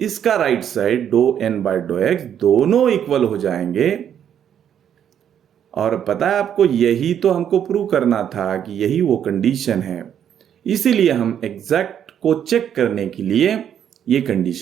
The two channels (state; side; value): quieter; left; 9.2 dB